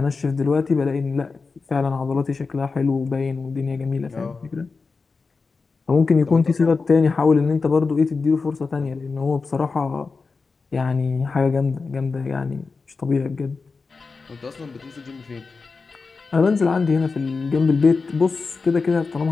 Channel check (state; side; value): quieter; right; 4.4 dB